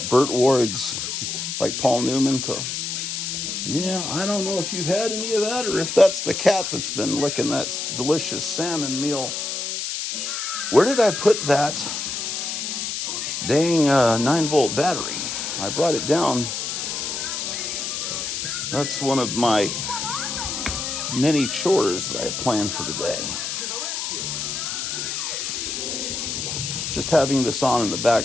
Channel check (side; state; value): left; noise; hiss, 3 dB below the sound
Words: it Burt Ward's, like Paul Newman. Yeah, I don't know if you've had any of that or if that's the cat that's been licking that delicious salmon meal. Where did I put that dang 9-volt battery? I brought it down. That's one of my many chores that I planned for today. Just having this on in the